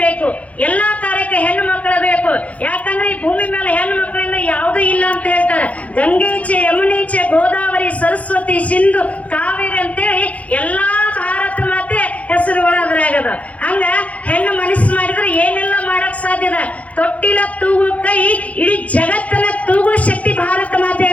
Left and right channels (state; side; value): late; right; 0.067 ms